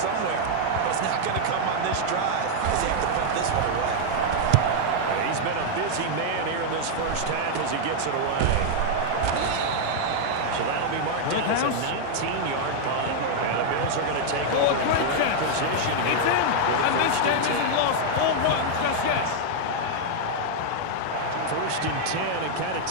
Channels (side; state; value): both; different; correlation -0.01